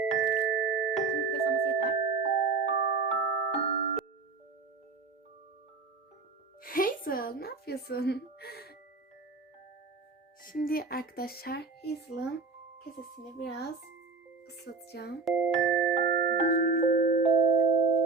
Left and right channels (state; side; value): quieter; left; 4.3 dB